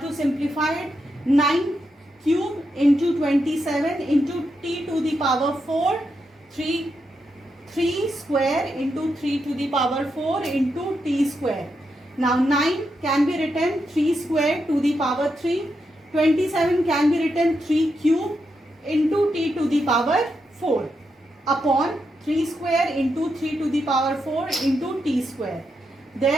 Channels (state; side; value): normal; both; correlation 0.84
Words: 9 cube into 27 into t to the power 4, 3 square into 3 to the power 4 into t square. Now 9 can be written 3 square to the power 3. 27 can be written 3 cube into t to the power 4 upon 3 square into 3 to the power 4 into t square.